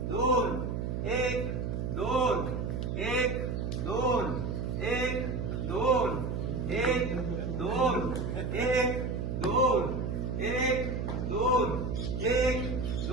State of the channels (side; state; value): right; noise; hum, 2 dB below the sound